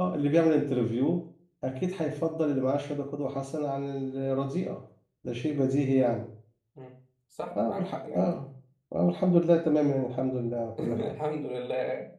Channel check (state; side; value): identical; both; correlation 1.00